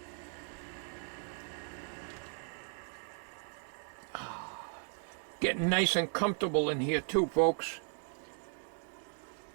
Getting nice and comfortable in here too, folks.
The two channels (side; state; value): left; silent; 53 dB below the other